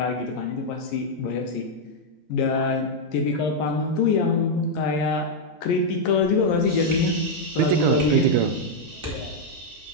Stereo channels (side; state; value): both; normal; correlation -0.03